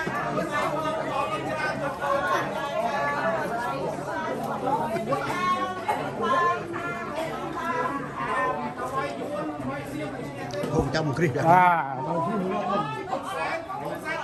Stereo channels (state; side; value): identical; both; correlation 1.00